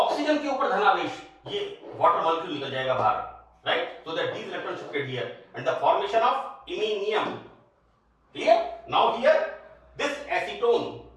के ऊपर धनावेश, ये वाटर मॉलिक्यूल निकल जाएगा बाहर, right, so that these electron shifted here and the formation of iminium, clear. Now here this acetone,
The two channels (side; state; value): both; identical; correlation 1.00